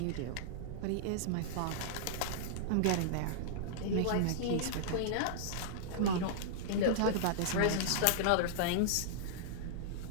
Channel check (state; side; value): different; both; correlation -0.02